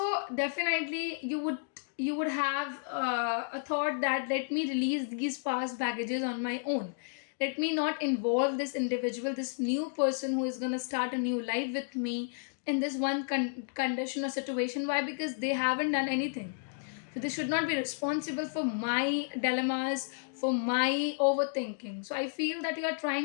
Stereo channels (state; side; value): silent; right; digital silence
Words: definitely you would have a thought that let me release these past baggages on my own. Let me not involve this individual, this new person who is gonna start a new life with me in this one condition or situation. Why? Because they haven't done anything, so they should not be responsible for my dilemmas, for my overthinking. So I feel that you are